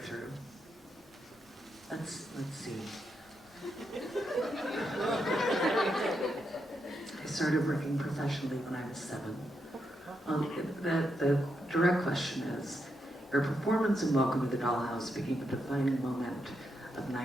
Let's see. I started working professionally when I was 7. The direct question is, your performance in Welcome to the Dollhouse became a defining moment of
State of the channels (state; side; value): normal; both; correlation 0.82